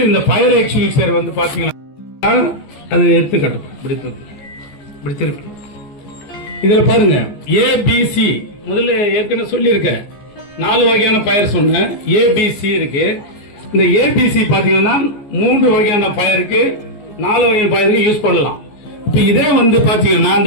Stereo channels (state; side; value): late; right; 14 ms